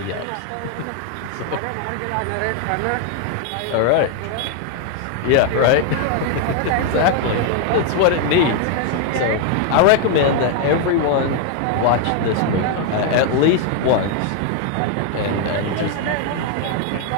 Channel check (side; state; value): both; different; correlation 0.00